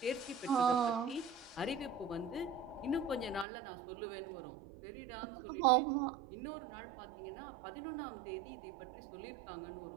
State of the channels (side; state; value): left; drops out; at 3.5 s